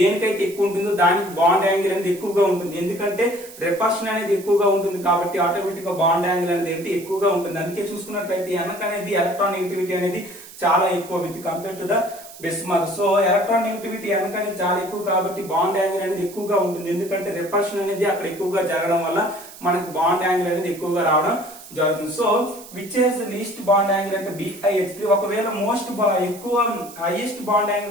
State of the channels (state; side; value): noise; right; hiss, 17 dB below the sound